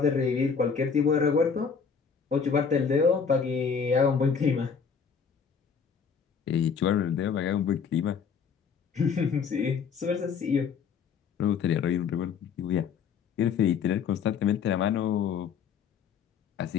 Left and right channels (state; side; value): quieter; right; 6.3 dB